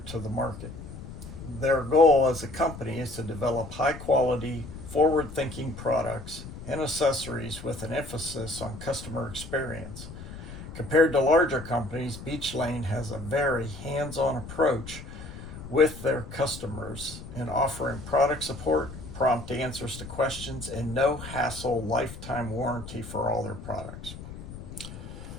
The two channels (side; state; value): left; noise; rumble, 12 dB below the sound